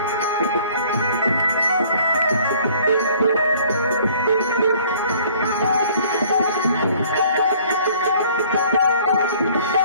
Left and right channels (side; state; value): both; inverted; correlation -0.55